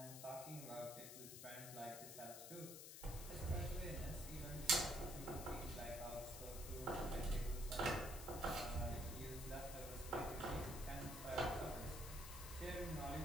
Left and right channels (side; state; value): left; noise; hiss, 9 dB below the sound